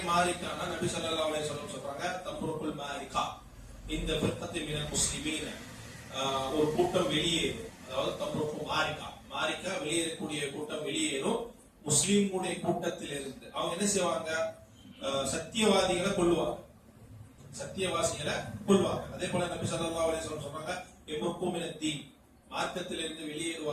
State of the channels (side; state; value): both; identical; correlation 1.00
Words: மாரிகானா நபி ஸல்லல்லாஹு அலைஹி வஸல்லம் சொல்றாங்க தம்ருக்குல் மாரிகா இந்த ஃபிர்கத்தி மினல் முஸ்லிமீன, ஒரு கூட்டம் வெளியேறும். அதாவது தம்ருக்கு மாரிகா வெளியேறக்கூடிய கூட்டம் வெளியேறும் முஸ்லிம்களுடைய கூட்டத்தில் இருந்து. அவங்க என்ன செய்வாங்க? சத்தியவாதிகளை கொல்லுவாங்க, சத்தியவாசிகளை கொல்வாங்க. அதே போல நபி ஸல்லல்லாஹு அலைஹி வஸல்லம் சொல்றாங்க யம்ருக்கு மினத் தீன், மார்க்கத்தில் இருந்து